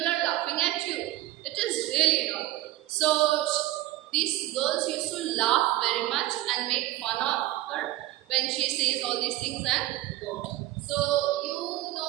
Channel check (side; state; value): left; quieter; 16.3 dB